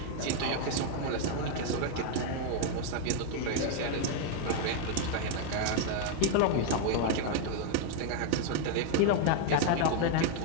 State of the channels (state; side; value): different; both; correlation 0.01